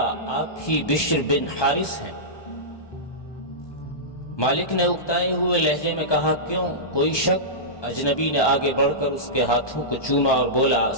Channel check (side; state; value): right; late; 1.2 ms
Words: آپ ہی بشر بن حارث ہیں؟ مالک نے اکتائے ہوئے لہجے میں کہا، کیوں، کوئی شک؟ اجنبی نے آگے بڑھ کر اس کے ہاتھوں کو چوما اور بولا،